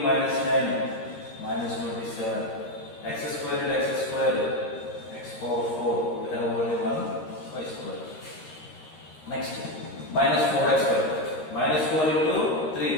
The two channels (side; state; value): right; late; 13 ms